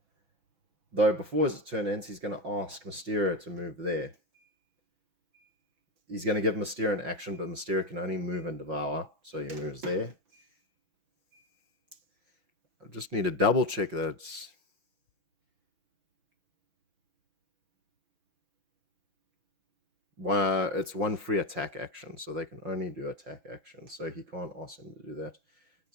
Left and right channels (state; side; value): late; left; 6.1 ms